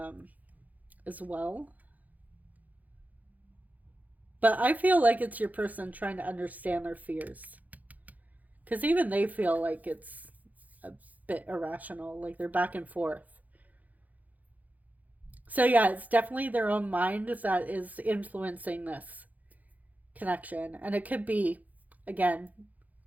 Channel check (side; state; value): left; late; 0.079 ms